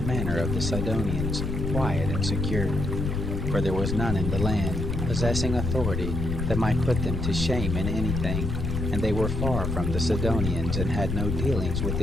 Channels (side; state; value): left; noise; rumble, 2 dB below the sound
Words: manner of the Sidonians, quiet and secure. For there was none in the land, possessing authority, that might put them to shame in anything, and they were far from the Sidonians, and had no dealings with